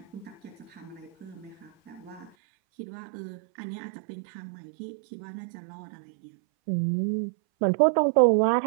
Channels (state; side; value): drops out; left; at 2.3 s